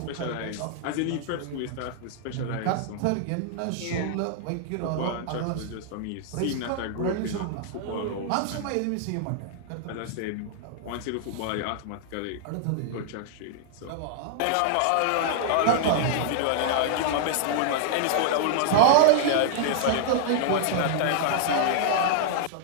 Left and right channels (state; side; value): different; both; correlation -0.01